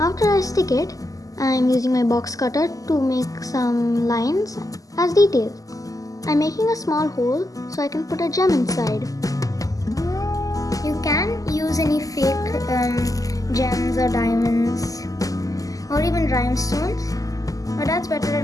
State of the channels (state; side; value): late; right; 0.17 ms